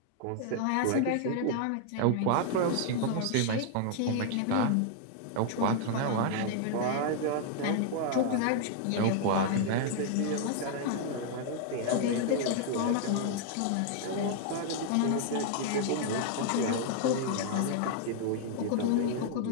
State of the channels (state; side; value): different; both; correlation 0.00